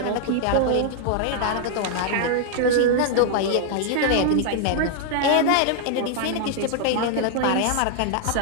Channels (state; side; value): different; both; correlation -0.01